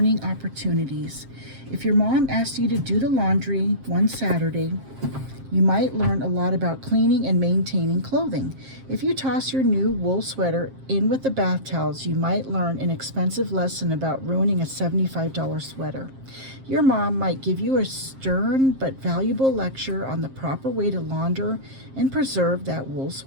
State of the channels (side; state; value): left; late; 7.5 ms